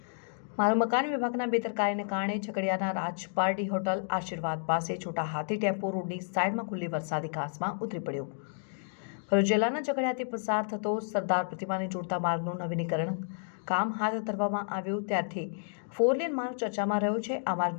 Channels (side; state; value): right; silent; digital silence